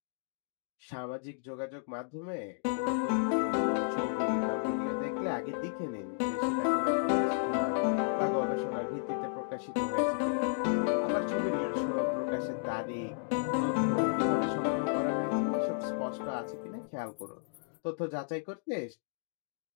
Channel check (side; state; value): right; silent; digital silence